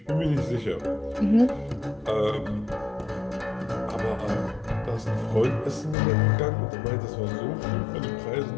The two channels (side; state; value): right; drops out; at 6.0 s